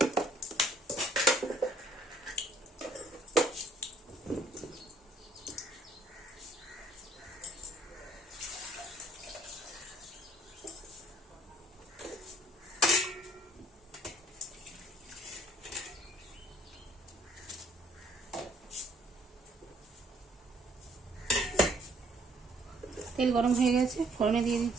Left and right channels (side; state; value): both; normal; correlation 0.61